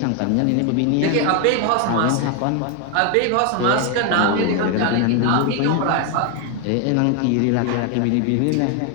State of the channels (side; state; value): both; different; correlation 0.01